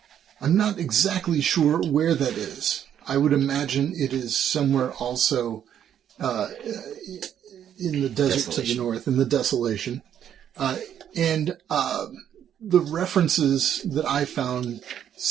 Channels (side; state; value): left; quieter; 9.6 dB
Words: I'm not exactly sure where that is. I would imagine it is somewhere also in the desert to the north, in the Desolation. The references that I found